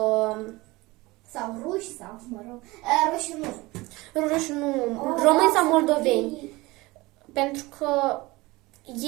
sau ruși sau, mă rog. Ruși nu. Ruși nu. Români sau moldoveni. Pentru că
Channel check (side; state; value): left; quieter; 21.7 dB